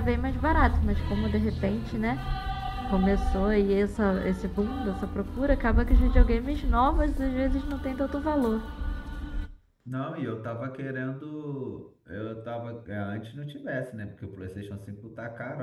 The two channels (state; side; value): identical; both; correlation 1.00